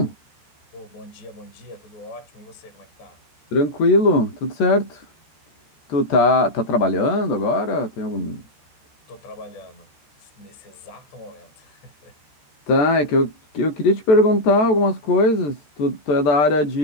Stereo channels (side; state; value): right; late; 14 ms